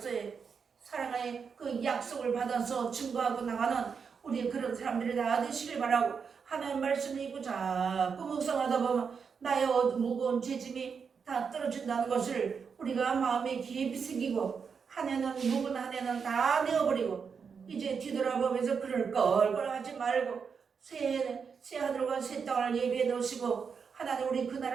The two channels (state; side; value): quieter; left; 6.1 dB